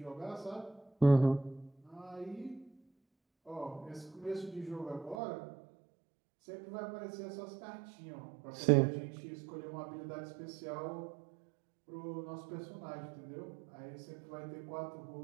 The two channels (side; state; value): left; drops out; at 5.2 s